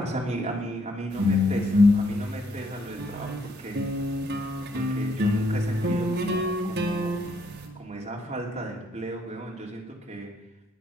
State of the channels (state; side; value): normal; both; correlation 0.71